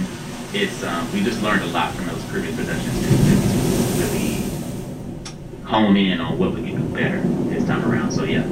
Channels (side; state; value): both; identical; correlation 1.00